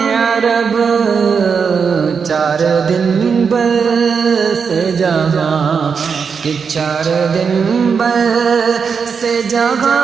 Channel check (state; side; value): quieter; left; 6.0 dB